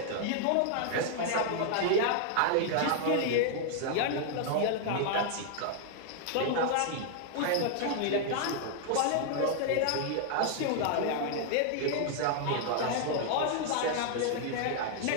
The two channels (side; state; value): both; different; correlation -0.01